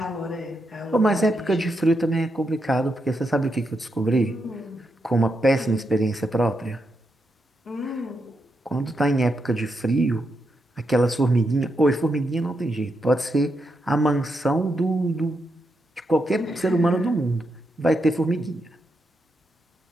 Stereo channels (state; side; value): normal; both; correlation 0.83